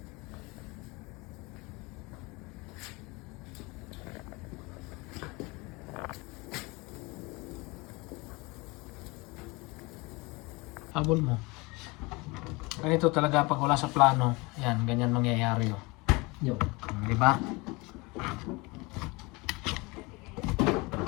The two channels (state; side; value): quieter; right; 25.4 dB